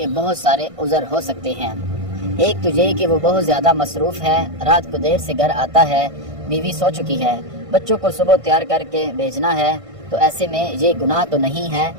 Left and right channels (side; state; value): left; late; 1.5 ms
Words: بہت سارے عذر ہو سکتے ہیں۔ ایک تو یہ کہ وہ بہت زیادہ مصروف ہے، رات کو دیر سے گھر آتا ہے، بیوی سو چکی ہے، بچوں کو صبح تیار کر کے بھیجنا ہے، تو ایسے میں یہ گناہ تو نہیں ہے،